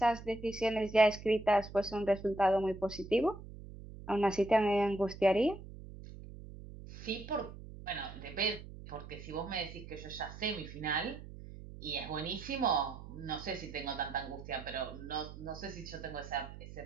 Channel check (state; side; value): noise; right; hum, 14 dB below the sound